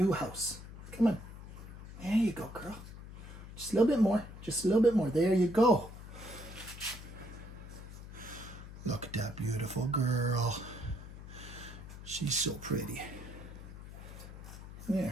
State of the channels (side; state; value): left; noise; hum, 13 dB below the sound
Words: house. Come on. There you go, girl. Just a little bit more. Just a little bit more. There you go. Look at that beautiful girl. She's so pretty.